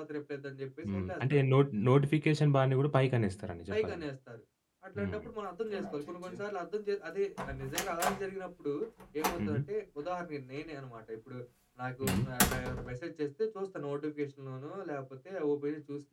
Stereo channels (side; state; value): both; identical; correlation 1.00